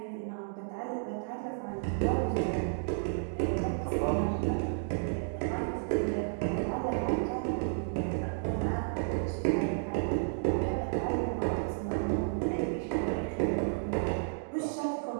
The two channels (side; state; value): left; silent; digital silence